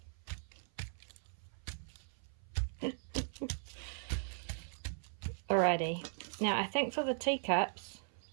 Alrighty, now I think for the teacups,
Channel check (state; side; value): silent; left; 52 dB below the other